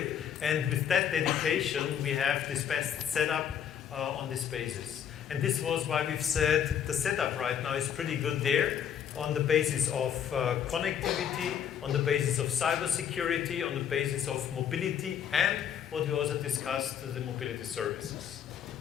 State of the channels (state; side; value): quieter; right; 8.8 dB